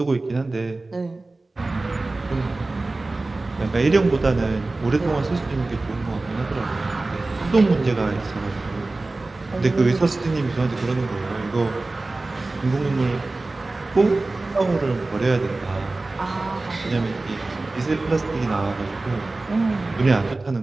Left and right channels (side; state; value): left; quieter; 3.2 dB